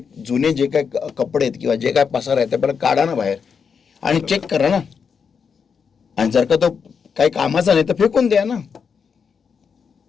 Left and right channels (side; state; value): right; quieter; 6.2 dB